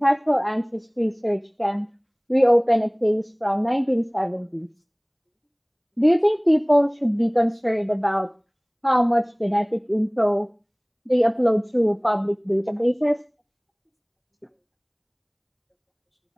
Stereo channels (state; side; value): identical; both; correlation 1.00